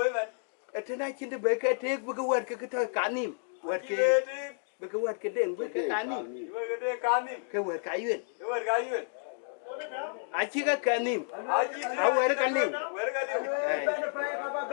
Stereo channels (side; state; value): right; silent; digital silence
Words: man. Etena chinde be ke tek bu ke wer ke to kanim. Wer ke Kide be ke wer ke den be ke kanim. di. Iwa kide kanim. Ke wer ka yu. Iwa ga yu. A chi ka kanim. Aji A wer ka nim. wer ga liu. Ba na pa ba